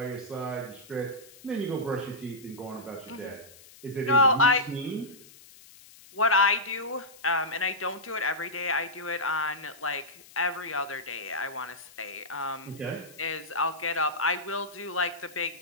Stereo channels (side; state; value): left; noise; hiss, 22 dB below the sound